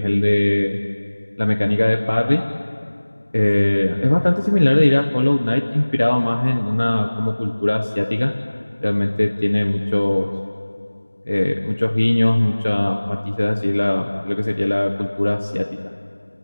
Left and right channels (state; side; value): inverted; both; correlation -1.00